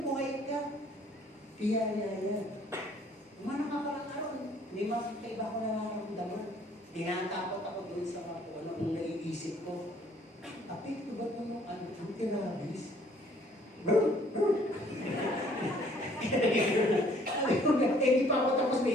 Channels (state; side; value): normal; both; correlation 0.59